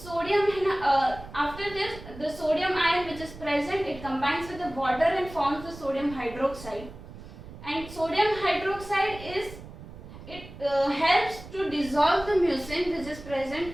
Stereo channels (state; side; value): noise; right; rumble, 15 dB below the sound